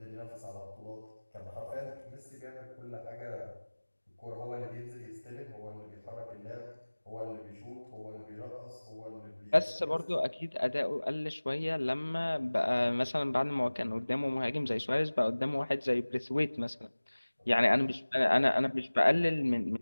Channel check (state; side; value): inverted; both; correlation -1.00